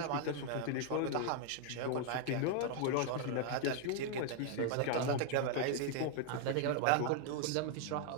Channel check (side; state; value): both; different; correlation 0.00